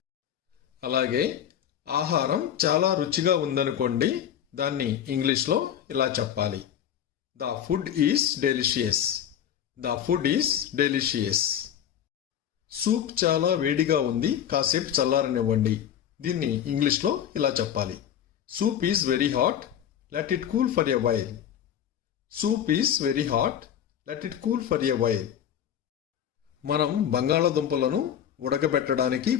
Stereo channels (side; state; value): right; quieter; 9.7 dB